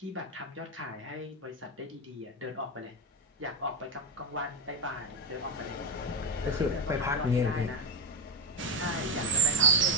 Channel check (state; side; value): normal; both; correlation 0.09